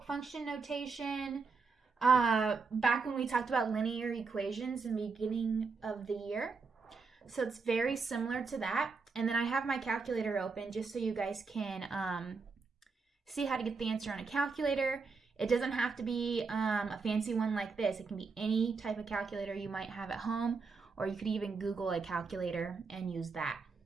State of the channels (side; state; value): left; quieter; 4.7 dB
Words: function notation back when we talked about linear equations in the beginning of the year. So it's very similar to that. And then I have my calculator open just so you guys can see how to get the answer on a calculator. It doesn't have to be a fancy one like this. It can be any type of calculator you might have at home, or you could even Google a calculator and use that.